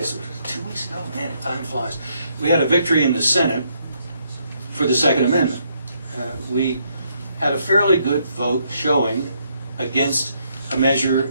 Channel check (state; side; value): inverted; both; correlation -0.73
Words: it was 2 weeks ago, man, time flies, we had a victory in the Senate for the Second Amendment. We had a fairly good vote showing against a measure